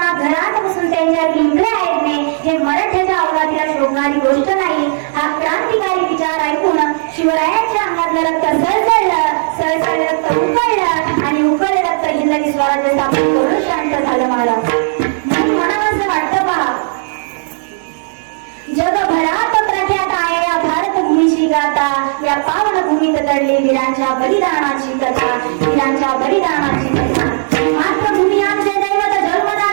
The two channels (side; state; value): left; silent; digital silence